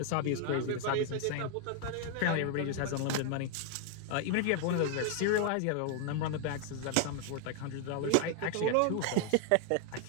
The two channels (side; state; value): both; different; correlation 0.00